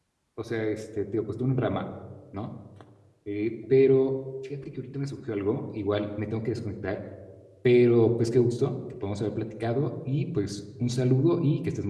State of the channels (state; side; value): identical; both; correlation 1.00